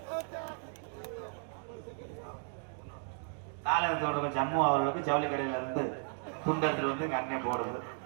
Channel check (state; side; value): silent; left; 55 dB below the other